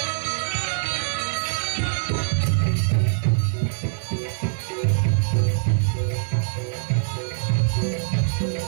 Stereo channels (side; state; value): left; silent; 58 dB below the other